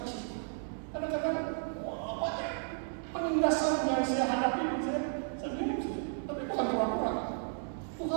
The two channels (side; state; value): left; silent; digital silence